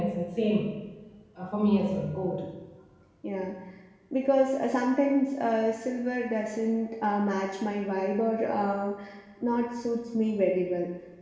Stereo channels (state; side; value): identical; both; correlation 1.00